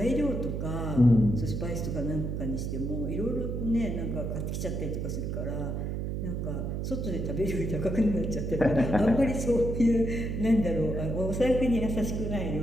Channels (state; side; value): noise; right; hum, 2 dB below the sound